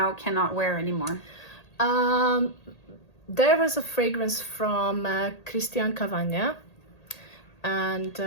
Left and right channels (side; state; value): right; late; 1.8 ms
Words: cannot wear anymore. There was a fragrance from Christian Cavagna, and